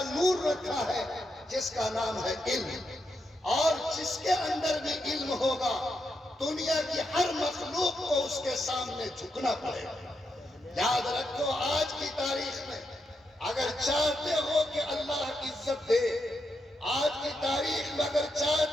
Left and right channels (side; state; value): both; normal; correlation 0.83